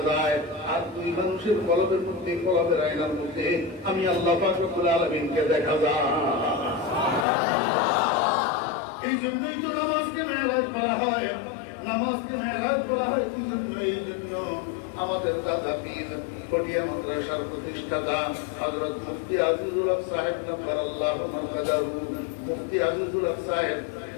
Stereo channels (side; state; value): right; drops out; at 7.2 s